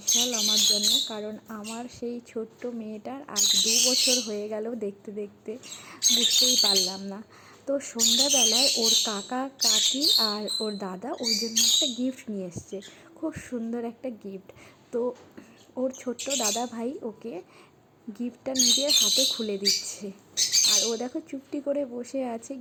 আমার জন্য, কারণ আমার সেই ছোট্ট মেয়েটার আজ 2 বছর হয়ে গেল। দেখতে দেখতে বুঝতেই পারলাম না। তো সন্ধ্যাবেলায় ওর কাকা কাকি আর ওর দাদা ওর জন্য একটা গিফট নিয়ে এসছে, খুব সুন্দর একটা গিফট। তো ওর ছোট্ট দাদা ভাই ওকে গিফটটা নিজের হাতে খুলে দিচ্ছে, আর ও দেখো চুপটি করে বসে আছে,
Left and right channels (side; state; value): both; identical; correlation 1.00